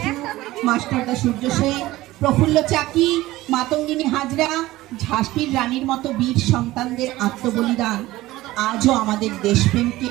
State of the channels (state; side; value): quieter; left; 17.4 dB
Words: মাস্টারদা সূর্য সেন, প্রফুল্ল চাকি, মাতঙ্গিনী হাজরা, ঝাঁসির রানীর মতো বীর সন্তানদের আত্মবলিদান আজও আমাদের দেশপ্রেমকে